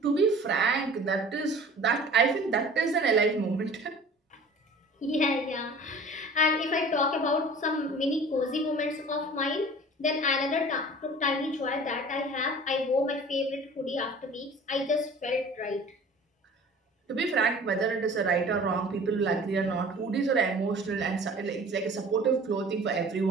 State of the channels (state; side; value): normal; both; correlation 0.45